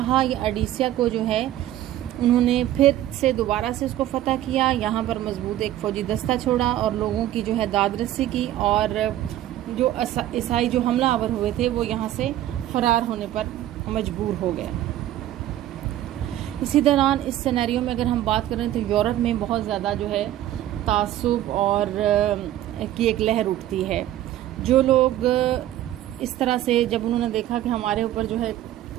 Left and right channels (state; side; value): quieter; left; 13.1 dB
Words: या एडिसिया को जो है उन्होंने फिर से दोबारा से इसको फ़तह किया, यहाँ पर मजबूत एक फ़ौजी दस्ता छोड़ा और लोगों की जो है दाद रसी की और जो ईसाई जो हमलावर हुए थे वो यहाँ से फ़रार होने पर मजबूर हो गए। इसी दौरान इस सिनेरियो में अगर हम बात करें तो यूरोप में बहुत ज़्यादा जो है तासुब और की एक लहर उठती है। जो लोग इस तरह से जब उन्होंने देखा कि हमारे ऊपर जो है